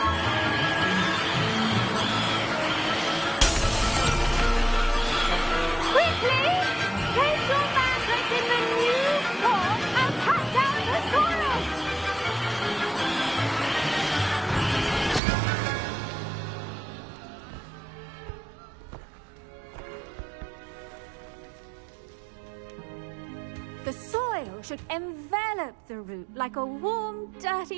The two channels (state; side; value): drops out; left; at 15.2 s